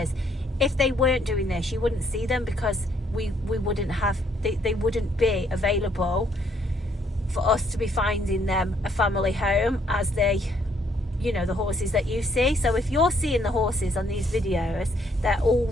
if they weren't doing this, you wouldn't see them, because we wouldn't have, they wouldn't be available for us to be finding them a family home as they, you know, the horses that you see. So if you're seeing the horses on these videos, they're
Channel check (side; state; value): both; normal; correlation 0.68